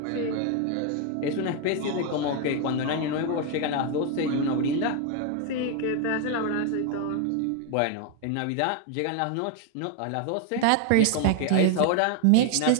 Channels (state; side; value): different; both; correlation 0.01